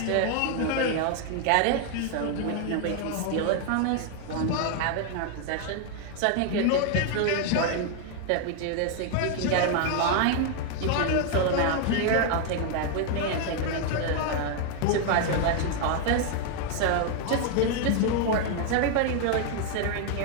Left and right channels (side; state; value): both; different; correlation 0.00